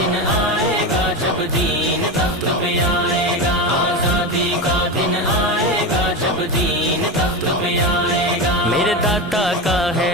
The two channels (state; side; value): normal; both; correlation 0.19